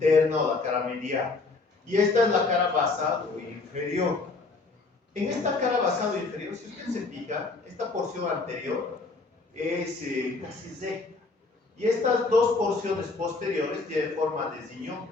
o la cara medial. Y esta es la cara basal o inferior. En esta cara basal o inferior, si usted se fija, esta porción anterior es casi recta. Y estas dos porciones posteriores tienen forma de ziñón.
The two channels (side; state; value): right; quieter; 3.7 dB